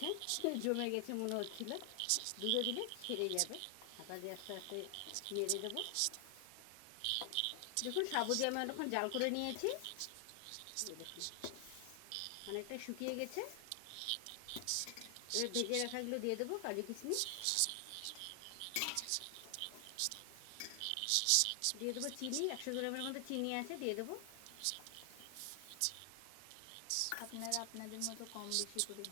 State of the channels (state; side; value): different; both; correlation 0.00